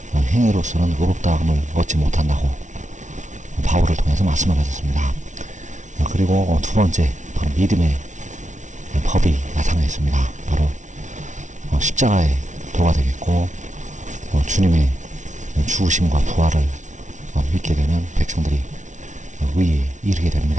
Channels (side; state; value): left; late; 0.36 ms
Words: 행위로서는 의롭다함을 얻지 못한다고 바울을 통해서 말씀을 하셨습니다. 그리고 두 번째, 바로 믿음의 법이 나타나 있습니다. 바로 십자가의 도가 되겠고, 주님의 죽으심과 부활을 믿게 되면 백성들이 의에 이르게